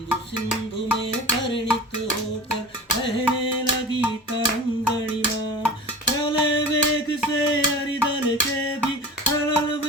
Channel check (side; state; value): both; normal; correlation 0.35